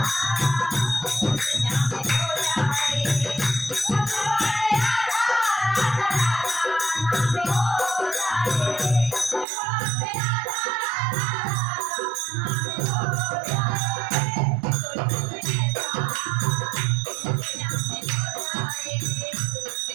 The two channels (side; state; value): left; drops out; at 9.5 s